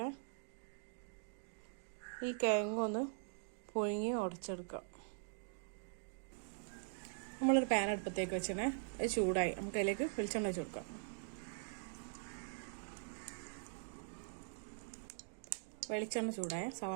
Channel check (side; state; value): left; silent; digital silence